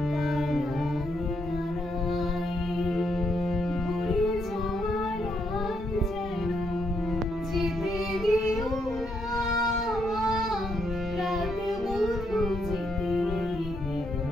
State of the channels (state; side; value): normal; both; correlation 0.77